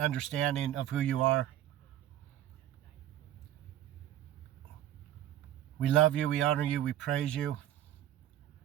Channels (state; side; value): quieter; left; 12.1 dB